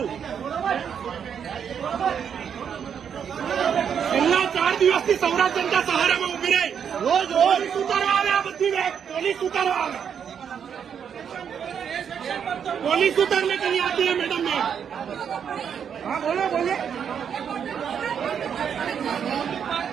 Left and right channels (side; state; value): left; quieter; 7.8 dB